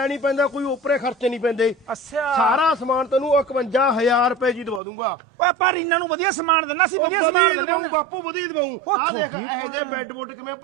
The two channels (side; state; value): left; drops out; at 4.8 s